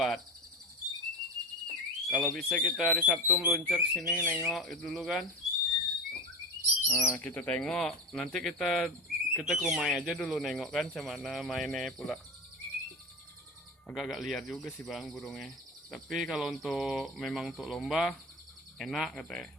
Kalau bisa kita hari Sabtu meluncur ke sini nengok dulu kan. Nah, kita tengok. Nanti kita ke rumah aja dulu nengok kan mana mainnya pula. Agak-agak liar juga sih bang burungnya. Tapi kalau memang untuk lomba enak katanya.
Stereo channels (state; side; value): normal; both; correlation 0.25